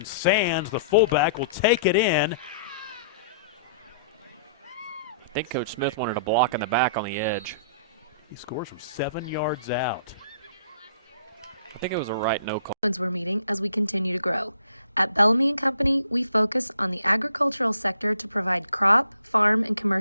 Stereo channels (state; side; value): inverted; both; correlation -0.58